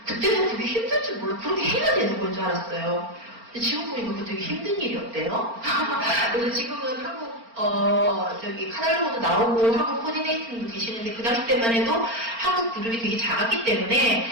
그때는 그게 힘들 줄 몰라. 그렇게 해야 되는 건 줄 알았어요. 근데 지금 보니까 그거 되게 힘든 일이었대요. 그래서 지금은 한국 저기 카달로그도 나오고 한국 코디네이팅도 계시는데 그 당시 때만 해도 한국 그룹이 되게 작았기 때문에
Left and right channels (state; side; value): late; left; 4.4 ms